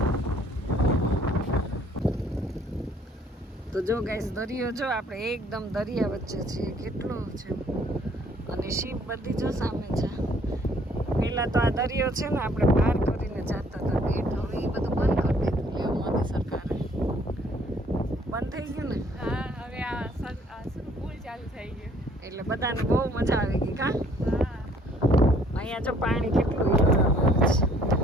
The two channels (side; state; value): both; normal; correlation 0.61